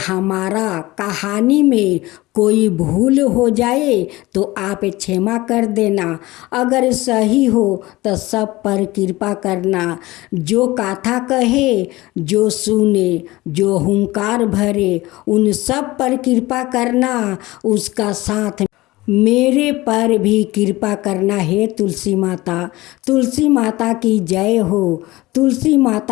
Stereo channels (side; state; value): right; quieter; 19.5 dB